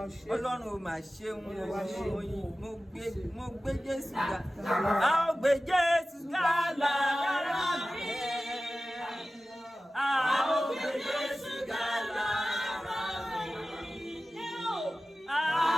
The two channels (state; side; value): normal; both; correlation 0.96